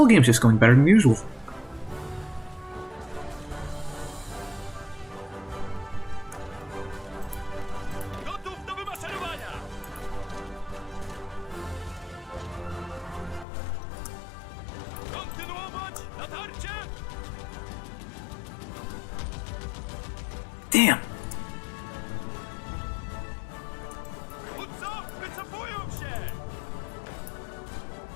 game's just going better than usual. Damn!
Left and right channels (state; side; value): drops out; right; at 13.5 s